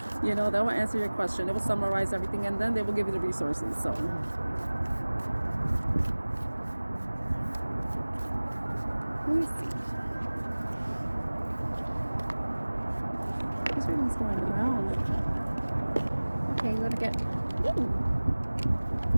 You know, they will answer your question, it will summarize everything, and then they will give you the resources. So let me see. This reading's going around. Okay, we're gonna get. Ooh.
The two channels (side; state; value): both; inverted; correlation -1.00